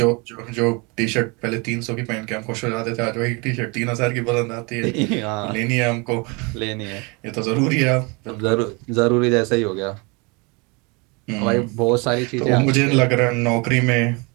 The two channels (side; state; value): left; quieter; 29.4 dB